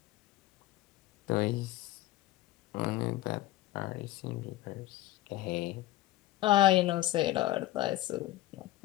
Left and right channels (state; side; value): quieter; right; 15.9 dB